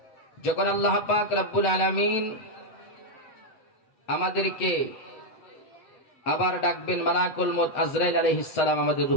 যখন আল্লাহ পাক রব্বুল আলামিন আমাদেরকে আবার ডাকবেন, মালাকুল মউত আজরাইল আলাইহিস সালাম আমাদের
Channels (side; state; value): right; late; 8.1 ms